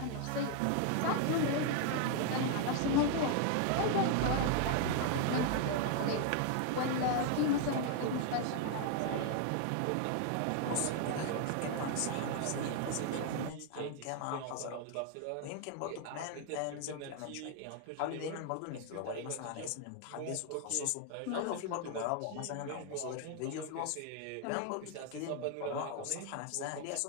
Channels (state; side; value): different; both; correlation 0.00